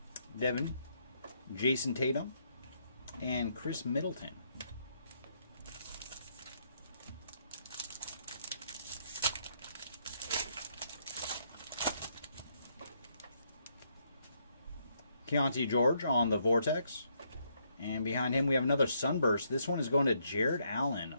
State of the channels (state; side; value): inverted; both; correlation -0.73